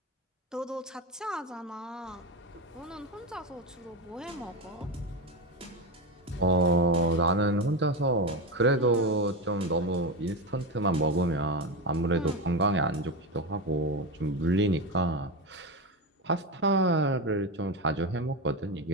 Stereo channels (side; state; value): both; normal; correlation 0.16